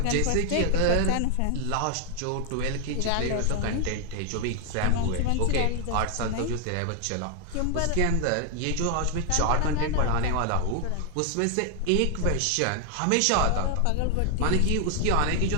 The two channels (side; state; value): both; different; correlation 0.00